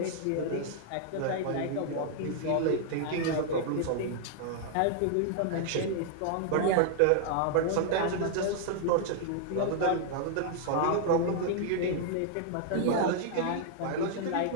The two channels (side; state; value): both; different; correlation 0.00